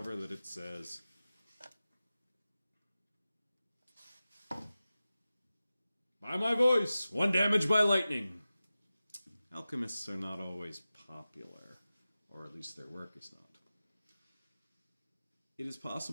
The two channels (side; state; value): both; inverted; correlation -0.95